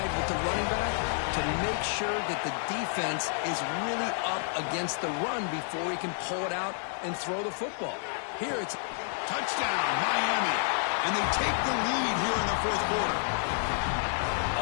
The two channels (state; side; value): silent; right; 58 dB below the other